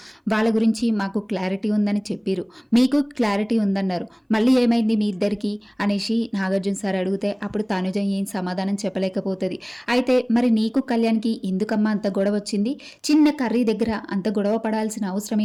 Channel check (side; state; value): both; identical; correlation 1.00